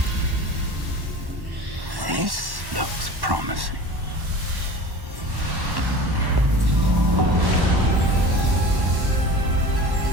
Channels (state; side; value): late; left; 1.1 ms